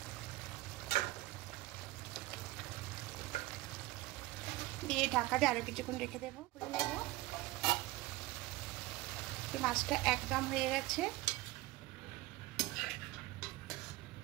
দিয়ে ঢাকা দিয়ে আরো কিছুক্ষণ রেখে দেবো। খুলে নেব। মাছটা একদম হয়ে গেছে।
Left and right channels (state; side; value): quieter; left; 18.6 dB